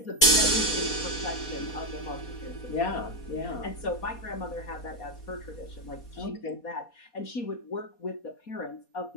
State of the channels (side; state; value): right; late; 4.2 ms